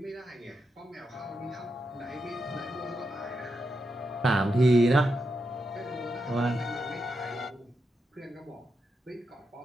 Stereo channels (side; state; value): both; normal; correlation 0.85